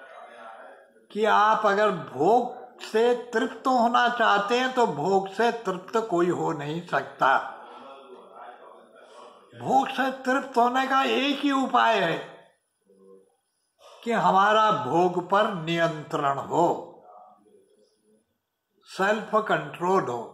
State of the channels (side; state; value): both; identical; correlation 1.00